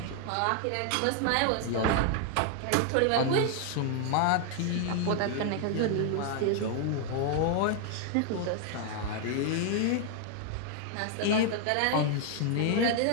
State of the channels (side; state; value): both; different; correlation 0.00